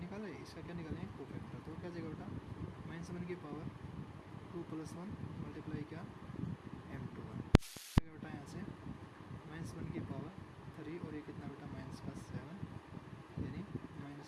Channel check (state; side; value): identical; both; correlation 1.00